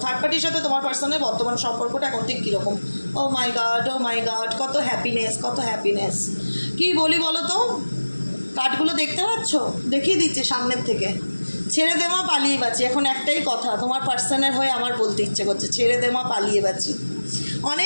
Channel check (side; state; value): both; inverted; correlation -1.00